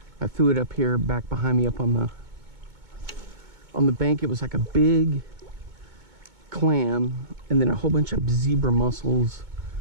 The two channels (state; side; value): late; left; 2.2 ms